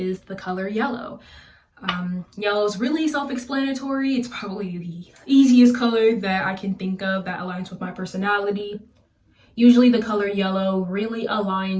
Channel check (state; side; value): identical; both; correlation 1.00